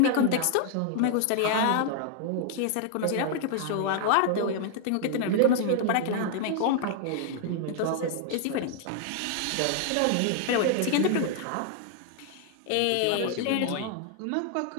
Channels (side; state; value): both; different; correlation -0.01